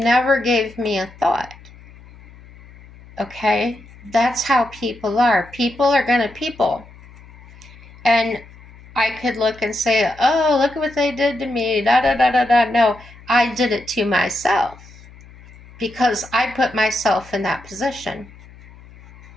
gave me a thought. Okay? That's how people are. People are gonna people. And I could look and say, oh, look at what they did to me, da da da da da. No, I did it to myself because I put myself in that position.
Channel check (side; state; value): left; noise; hum, 22 dB below the sound